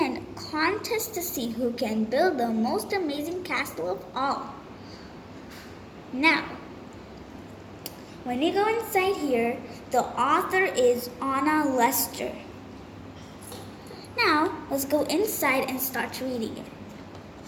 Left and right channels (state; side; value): identical; both; correlation 1.00